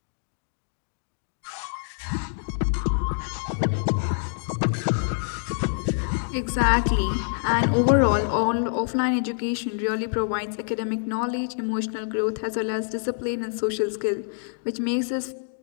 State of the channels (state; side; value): silent; right; digital silence